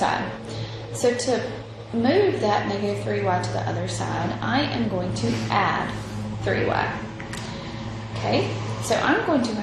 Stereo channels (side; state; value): both; identical; correlation 1.00